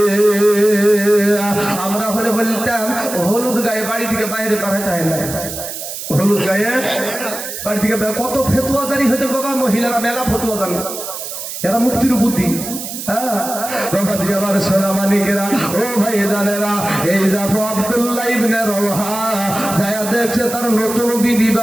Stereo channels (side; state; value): right; noise; hiss, 8 dB below the sound